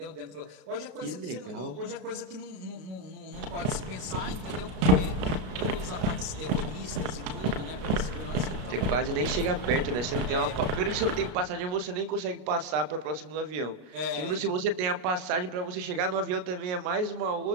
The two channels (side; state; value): left; late; 33 ms